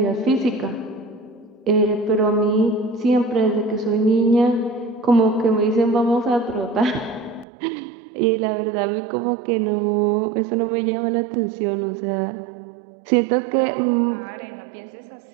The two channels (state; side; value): drops out; left; at 7.5 s